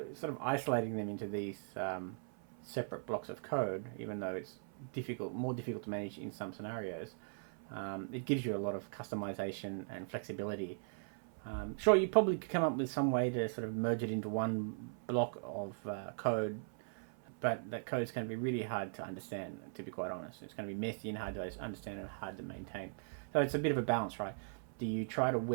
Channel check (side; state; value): left; silent; 52 dB below the other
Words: sort of isolating them into these separate blocks of code, even though it's more difficult to manage in some scenarios, it gives you a lot of customization and flexibility. Sure, you probably could come up with some way to sort of merge it into one block of code, but that code is going to be really hard to understand, to be quite honest. It's going to be messy and hard to understand and hard to maintain. So it's a bit of a balance, right? Do you try to